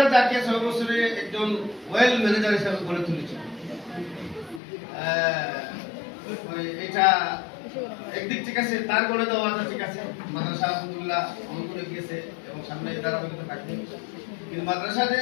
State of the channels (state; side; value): drops out; right; at 4.6 s